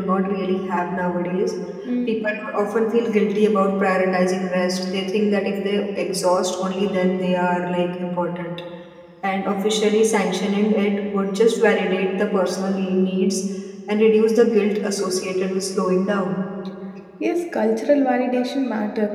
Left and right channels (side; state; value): both; identical; correlation 1.00